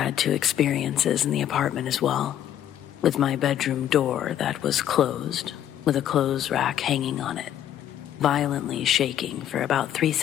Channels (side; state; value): right; quieter; 11.0 dB